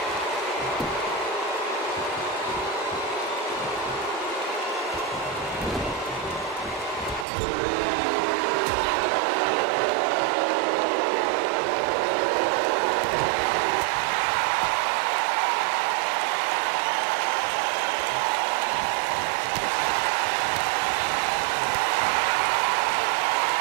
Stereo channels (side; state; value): left; drops out; at 7.2 s